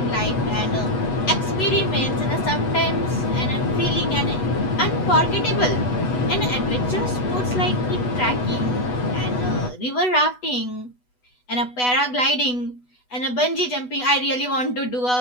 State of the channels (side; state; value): right; late; 8.1 ms